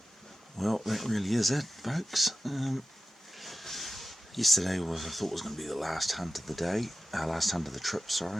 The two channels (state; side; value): normal; both; correlation 0.94